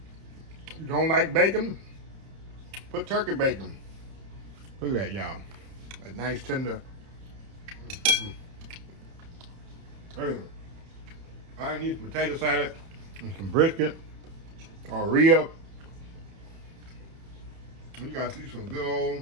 You don't like bacon? Put turkey bacon. Look at that, y'all. A nice tender. I need some potato salad and some brisket or rib. You gotta see some good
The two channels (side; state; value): left; late; 30 ms